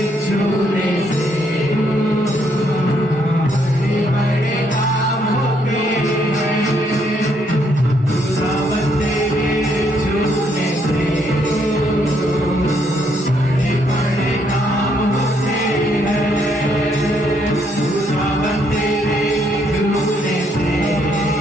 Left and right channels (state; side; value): normal; both; correlation 0.72